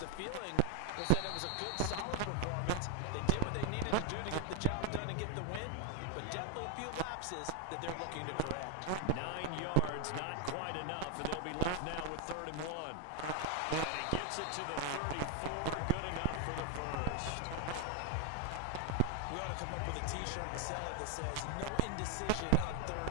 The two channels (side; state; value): both; different; correlation 0.01